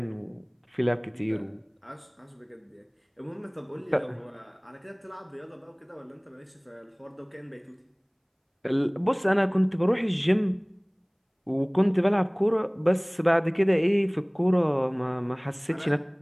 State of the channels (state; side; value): identical; both; correlation 1.00